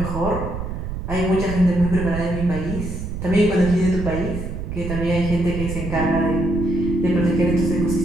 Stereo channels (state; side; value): noise; right; rumble, 6 dB below the sound